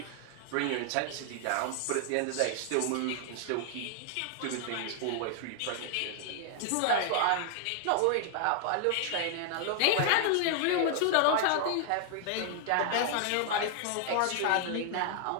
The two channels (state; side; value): different; both; correlation 0.00